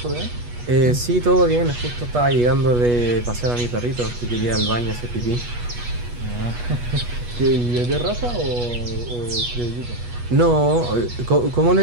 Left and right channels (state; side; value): late; left; 8.3 ms